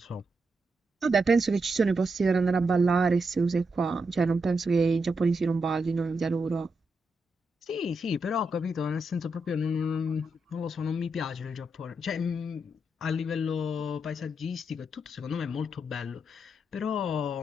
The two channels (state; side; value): normal; both; correlation 0.83